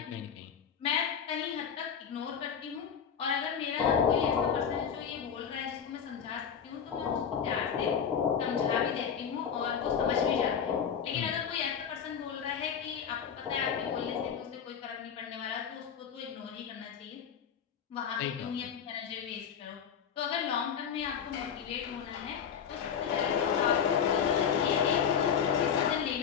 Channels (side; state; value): right; quieter; 7.6 dB